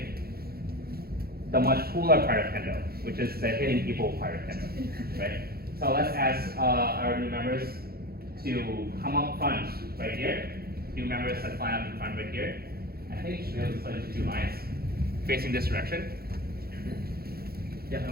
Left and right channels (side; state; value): left; late; 0.45 ms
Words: the much cooler part of Kendo, which is the hitting people part of Kendo, right? So let's ask our new members to come up front right here. New members that line up in front right here. I think you should be able to split into 2 lines facing this direction. Yeah,